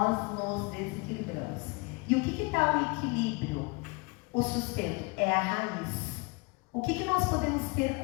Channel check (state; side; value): quieter; right; 28.4 dB